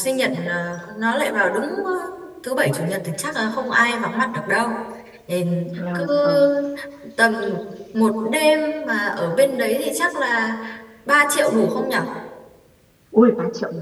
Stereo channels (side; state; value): both; identical; correlation 1.00